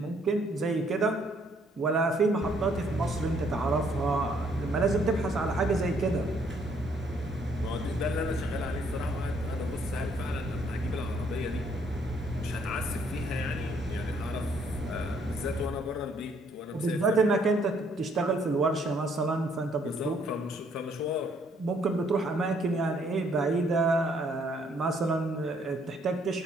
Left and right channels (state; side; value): normal; both; correlation 0.67